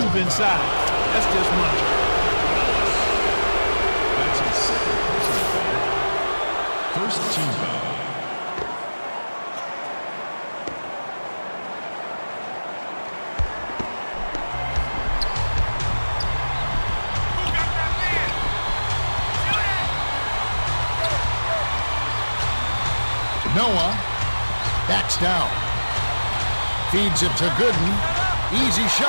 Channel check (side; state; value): both; inverted; correlation -1.00